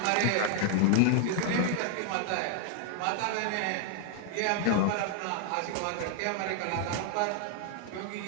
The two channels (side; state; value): both; different; correlation 0.00